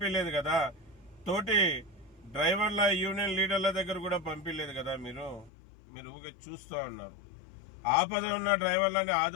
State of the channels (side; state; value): right; drops out; at 5.5 s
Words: కదా, తోటి డ్రైవర్ల యూనియన్ లీడర్ల దగ్గర కూడా పంపించలేదు కదా. మీరు ఊరికే చూస్తూ ఉన్నారు. ఆపద ఉన్న డ్రైవర్లని